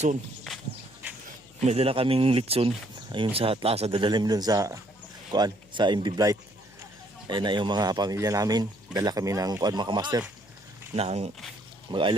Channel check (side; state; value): left; noise; hum, 27 dB below the sound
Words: May dala kaming litson. Ayun sa Atlasa, dadalim dun sa MB Blight. Ayun na yung mga pamilya namin. Dala kami ng mga kamaster. Nang